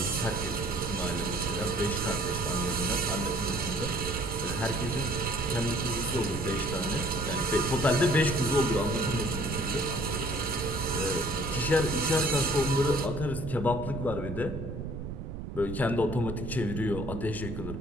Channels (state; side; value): noise; right; rumble, 7 dB below the sound